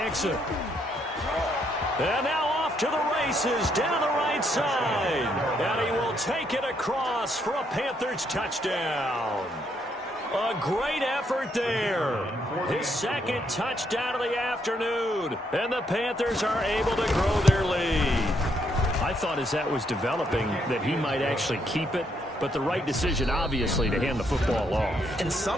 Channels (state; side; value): normal; both; correlation 0.74